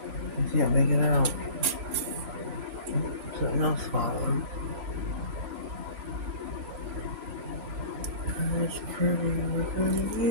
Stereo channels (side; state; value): left; late; 3.0 ms